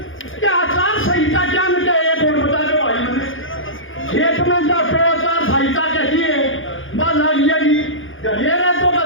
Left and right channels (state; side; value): late; right; 0.58 ms